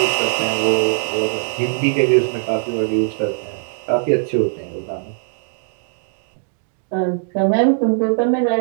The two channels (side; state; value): left; silent; digital silence